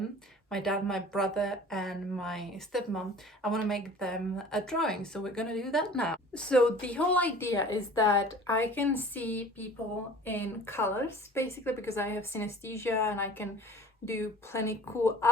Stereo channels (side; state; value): both; normal; correlation 0.45